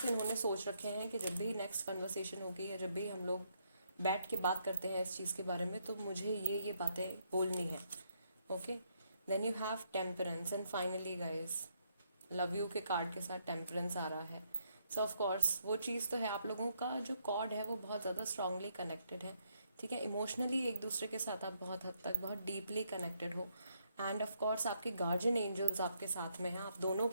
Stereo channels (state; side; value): inverted; both; correlation -0.74